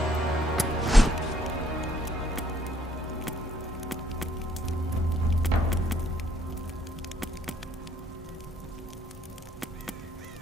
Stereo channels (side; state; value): both; normal; correlation 0.67